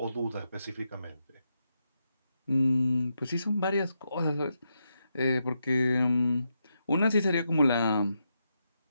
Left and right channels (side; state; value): both; inverted; correlation -0.84